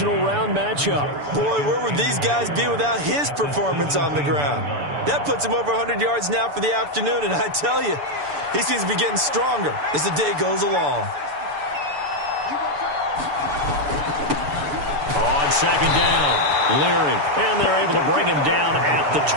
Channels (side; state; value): left; late; 6.9 ms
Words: round matchup. Boy, where would these guys be without his performance on the ground? That puts him over 100 yards now for the afternoon, and I tell you, he seems to be getting stronger as the day goes along. On second down, Leary, and they're able to bring him down at the